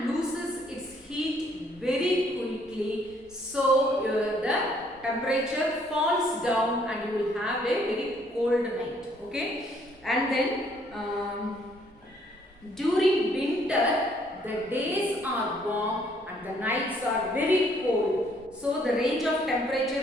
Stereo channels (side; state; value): both; normal; correlation 0.65